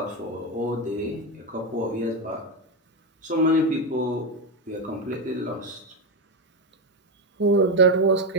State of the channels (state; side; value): normal; both; correlation 0.10